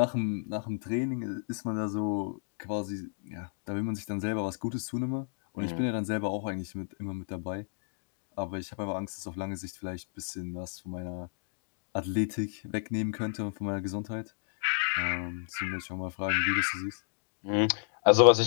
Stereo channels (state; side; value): silent; right; digital silence